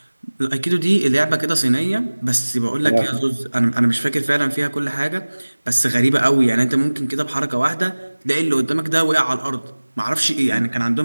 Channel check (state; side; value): inverted; both; correlation -1.00